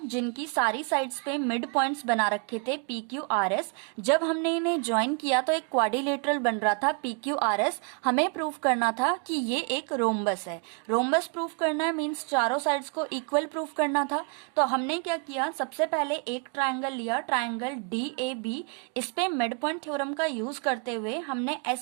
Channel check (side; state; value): left; quieter; 35.7 dB